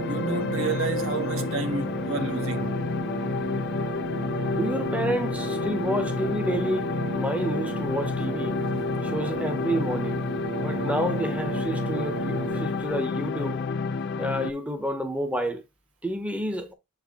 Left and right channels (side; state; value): both; normal; correlation 0.51